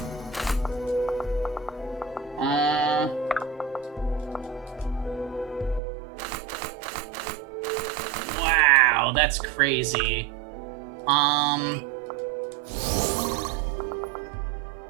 Wow, that's crazy.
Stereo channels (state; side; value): drops out; left; at 5.8 s